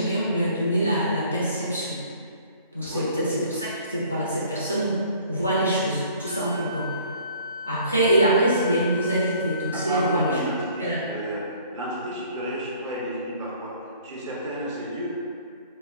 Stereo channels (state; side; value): inverted; both; correlation -0.54